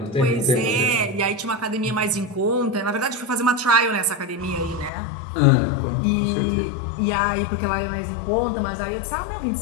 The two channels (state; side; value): drops out; right; at 4.9 s